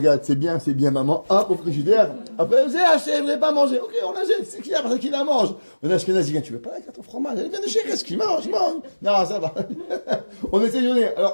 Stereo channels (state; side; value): inverted; both; correlation -1.00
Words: c'est bien, maman. Hop, au frigidaire. Après, vous avez acheté, vous n'avez pas mangé. Ok, on l'achète, c'est qui parce qu'il la mange. On a Ashkenazi, tu veux pas la carte au fromage? Elle vient de chez qu'est-ce qu'il mange? Non, ça va. On essaie de donner.